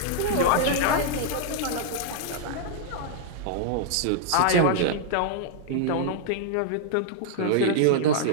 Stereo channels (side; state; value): both; different; correlation -0.01